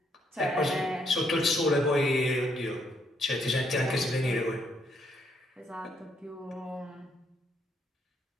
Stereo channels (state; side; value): normal; both; correlation 0.73